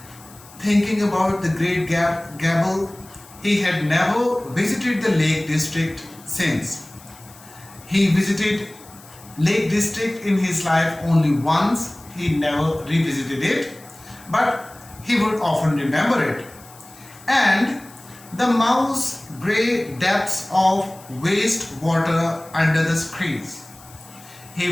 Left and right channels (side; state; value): left; noise; hiss, 22 dB below the sound